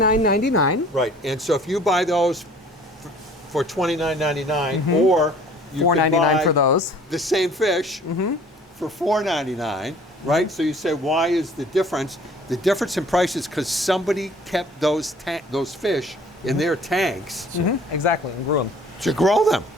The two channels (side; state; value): both; normal; correlation 0.52